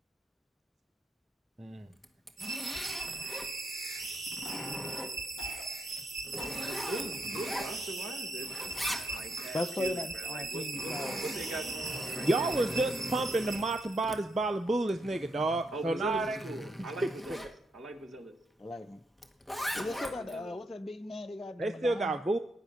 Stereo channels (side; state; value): both; normal; correlation 0.79